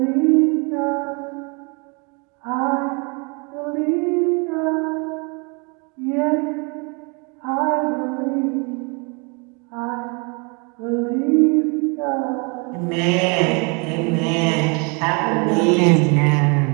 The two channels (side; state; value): left; quieter; 32.6 dB